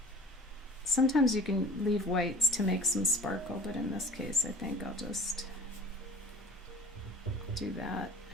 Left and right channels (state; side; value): normal; both; correlation 0.46